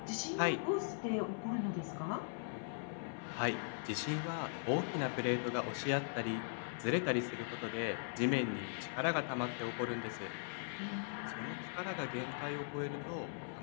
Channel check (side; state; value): right; silent; 51 dB below the other